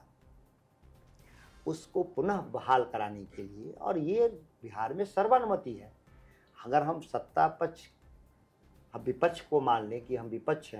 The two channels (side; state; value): both; identical; correlation 1.00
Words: उसको पुनः बहाल कराने के लिए, और ये बिहार में सर्वानुमति है, अगर हम सत्ता पक्ष हम विपक्ष को मान लें कि हम विपक्ष